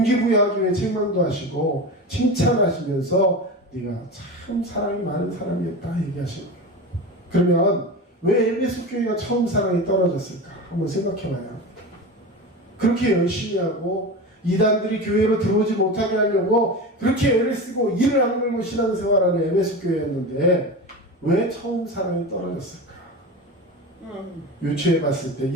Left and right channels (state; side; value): normal; both; correlation 0.26